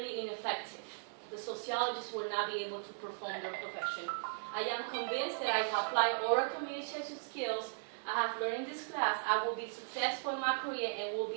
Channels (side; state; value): left; silent; digital silence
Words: ineffective. The sociologists will not be able to perform their profession. I am convinced that if I apply oral communication skills I have learned in this class, I will be successful in my career and will